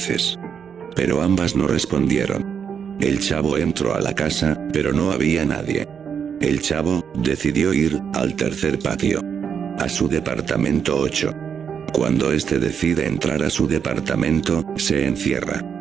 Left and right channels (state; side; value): quieter; left; 7.4 dB